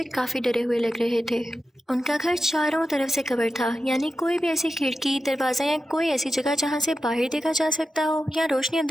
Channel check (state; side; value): normal; both; correlation 0.91